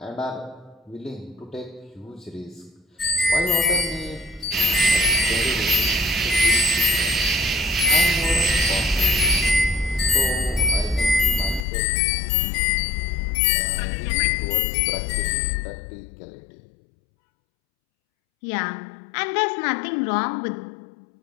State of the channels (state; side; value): drops out; right; at 11.7 s